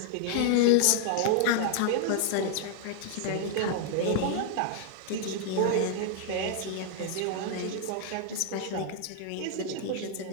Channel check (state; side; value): different; both; correlation 0.00